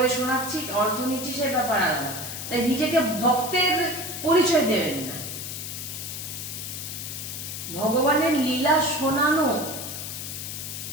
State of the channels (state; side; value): noise; left; hiss, 7 dB below the sound